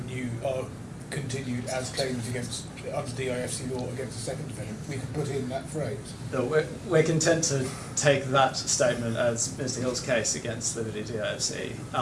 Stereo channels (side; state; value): both; identical; correlation 1.00